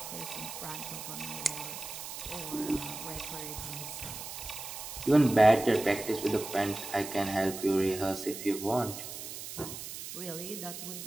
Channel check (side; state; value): right; noise; hiss, 9 dB below the sound